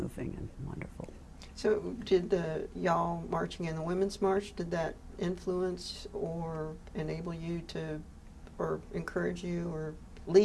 and wonderful. So did y'all marching in the Women's March, did that influence or enable you to, or encourage you or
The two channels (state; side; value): identical; both; correlation 1.00